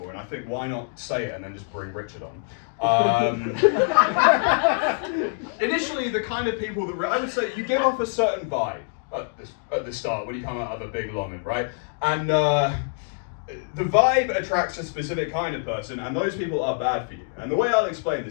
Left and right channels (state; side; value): silent; right; digital silence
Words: and I think why not say it and then just bring Richard on. Initially, the kind of people that I would say you give off a certain vibe at the start when you come out of a big longing, right? And the vibe attracts a specific kind of person, and those people are bad for you. And the way I'll explain